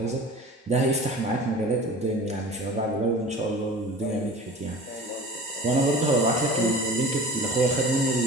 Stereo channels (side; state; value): both; normal; correlation 0.40